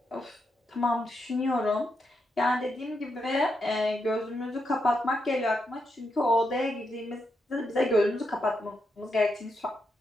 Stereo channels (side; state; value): both; normal; correlation 0.83